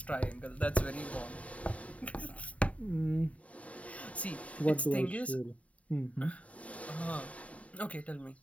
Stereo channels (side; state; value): right; late; 0.067 ms